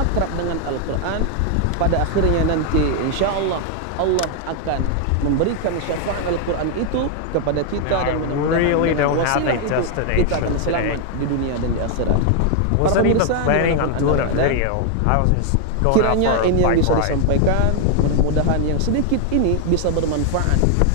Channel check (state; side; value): different; both; correlation 0.00